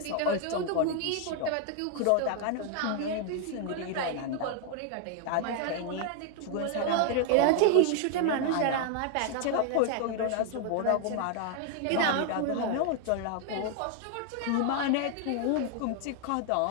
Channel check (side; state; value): both; different; correlation 0.00